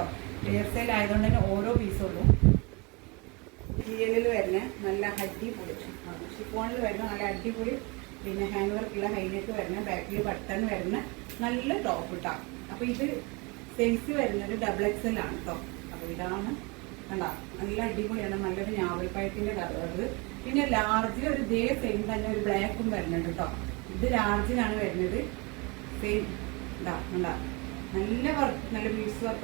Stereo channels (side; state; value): left; quieter; 28.3 dB